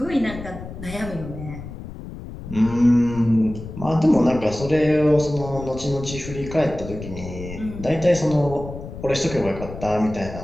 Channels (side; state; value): left; noise; rumble, 11 dB below the sound